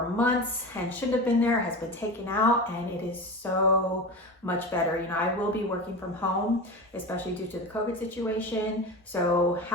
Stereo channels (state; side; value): normal; both; correlation 0.28